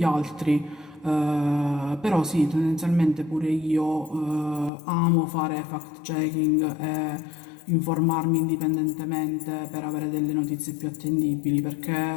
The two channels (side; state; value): right; drops out; at 4.7 s